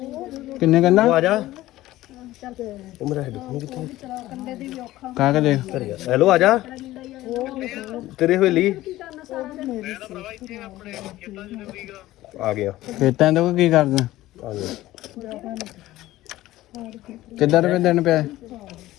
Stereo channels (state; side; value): quieter; right; 16.1 dB